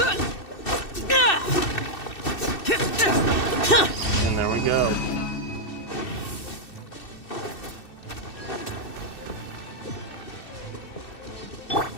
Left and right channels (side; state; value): right; late; 2.6 ms